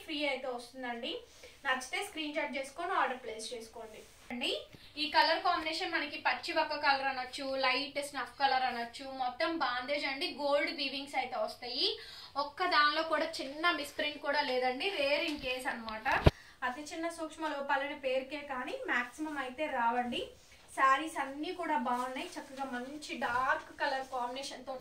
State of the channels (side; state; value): both; identical; correlation 1.00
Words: ఫ్రీ అయితే వస్తుందండి. నచ్చితే స్క్రీన్ షాట్ చేసుకొని ఆర్డర్ ప్లేస్ చేసుకోండి అండి. ఈ కలర్ కాంబినేషన్ మనకి పచ్చి వక్క కలర్ అనొచ్చు, లైట్ స్నఫ్ కలర్ అనొచ్చు. మొత్తం బాందేజ్ అండి, గోల్డ్ వీవింగ్స్ అయితే వస్తాయి. ఒక్క దానిలో కూడా చిన్న మిస్ప్రింట్ కూడా లేదండి. రేర్ ఇన్ కేస్ అనమాట. అతి చిన్న సూక్ష్మ లోపాలనే పేరుకే కానీ మాక్సిమం అయితే రావండి. శారీస్ అన్ని కూడా బాగున్నాయి. చక్కగా మంచి డార్క్ కలర్ కాంబినేషన్